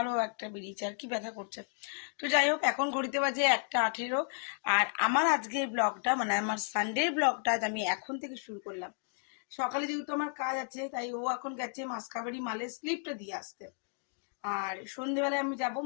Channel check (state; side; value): silent; right; 56 dB below the other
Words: একটা বেরিয়েছে, আর কি ব্যথা করছে। তো যাই হোক, এখন ঘড়িতে বাজে 1:18, আর আমার আজকের ব্লগটা মানে আমার সানডের ব্লগটা আমি এখন থেকে শুরু করলাম। সকালে যেহেতু আমার কাজ আছে, তাই ও এখন গেছে মাসকাবাড়ি মালের স্লিপটা দিয়ে আসতে, আর সন্ধ্যেবেলায় আমি যাবো